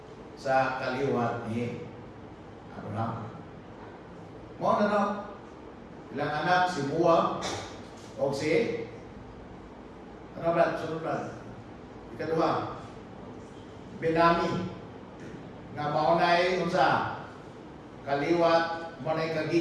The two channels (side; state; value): both; identical; correlation 1.00